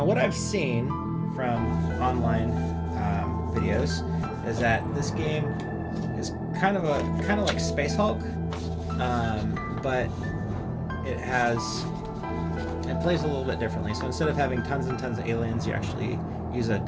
what I've seen from online videos is that this game is kind of like Space Hulk, but it plays a little bit differently. So instead of having tons and tons of aliens, you actually use a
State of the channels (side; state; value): both; identical; correlation 1.00